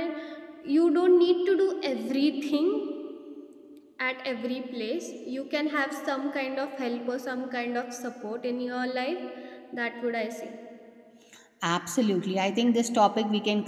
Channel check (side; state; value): both; identical; correlation 1.00